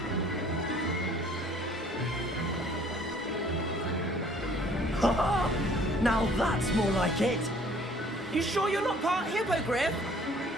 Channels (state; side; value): normal; both; correlation 0.56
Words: Now that's more like it! You sure you're not part hippogriff?